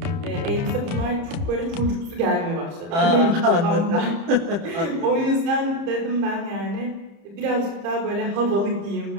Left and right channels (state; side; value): late; left; 30 ms